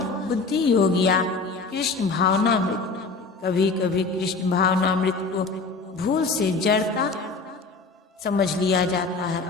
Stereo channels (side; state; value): right; quieter; 4.0 dB